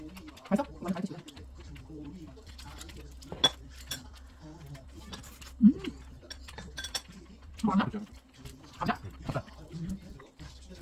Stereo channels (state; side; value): identical; both; correlation 1.00